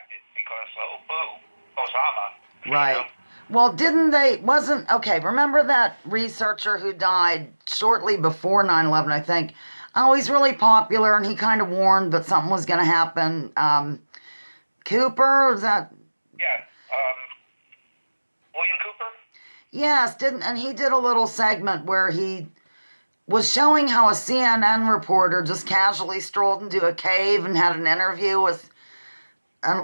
because Osama. Right. Well, remember that researcher who died shortly before 9/11, I think? Oh, he's really popular, and he kind of warned that something was going to happen. Cooper, is that? Yeah. William Cooper? Yes, and he did a little segment where he was showing how a CNN reporter just casually strolled into a cave and had an interview with an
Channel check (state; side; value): inverted; both; correlation -1.00